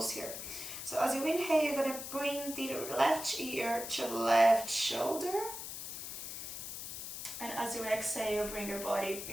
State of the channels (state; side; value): noise; left; hiss, 7 dB below the sound